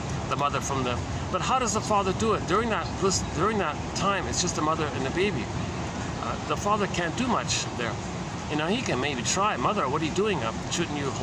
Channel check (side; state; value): both; identical; correlation 1.00